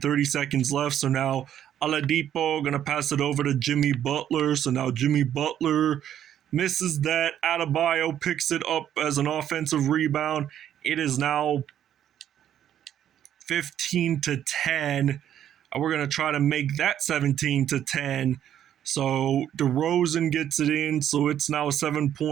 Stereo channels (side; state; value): left; quieter; 10.4 dB